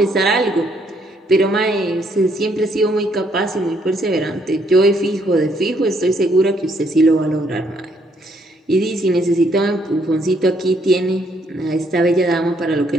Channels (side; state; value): both; normal; correlation 0.70